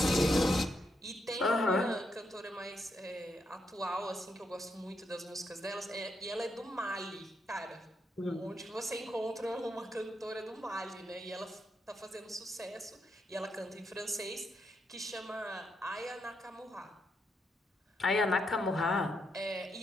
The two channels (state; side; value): normal; both; correlation 0.80